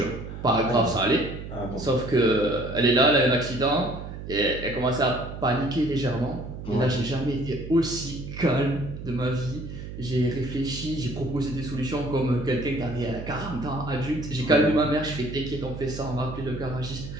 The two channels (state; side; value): noise; right; hum, 10 dB below the sound